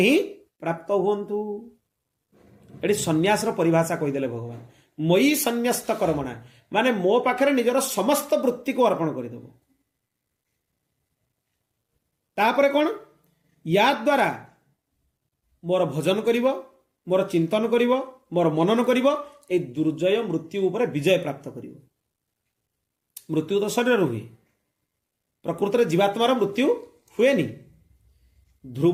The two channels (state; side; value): identical; both; correlation 1.00